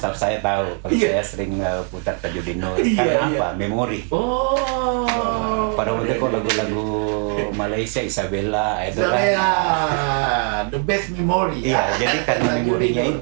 saya tahu kalau saya sering putar Tajudin Nur. Karena apa? Memori. Oh. Pada waktu itu kok lagu-lagu Malaysia, Isabella itu kan. The best memory. Iya, jadi karena memorinya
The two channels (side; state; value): left; quieter; 38.6 dB